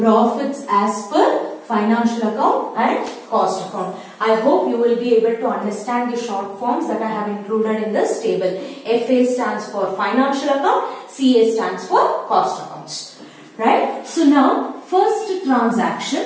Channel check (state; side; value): identical; both; correlation 1.00